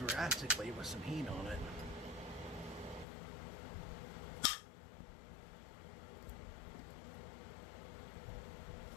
drastically with some heat on it.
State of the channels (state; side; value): drops out; right; at 3.1 s